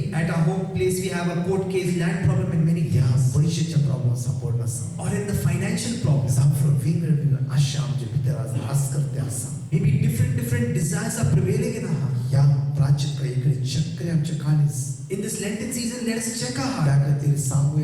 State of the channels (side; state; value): both; identical; correlation 1.00